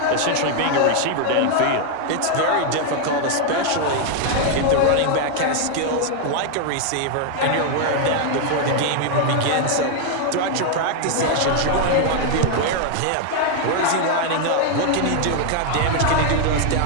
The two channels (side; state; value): both; different; correlation 0.00